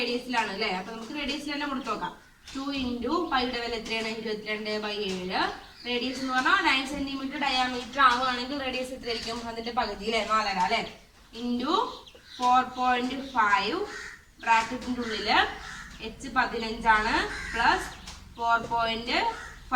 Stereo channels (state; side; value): identical; both; correlation 1.00